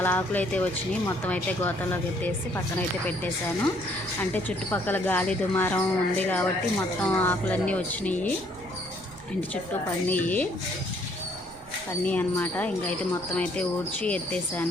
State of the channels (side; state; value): right; noise; rumble, 22 dB below the sound